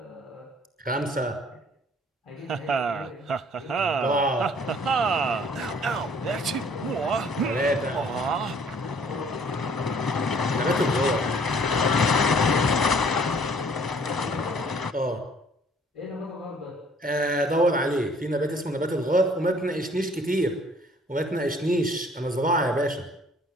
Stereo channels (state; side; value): normal; both; correlation 0.57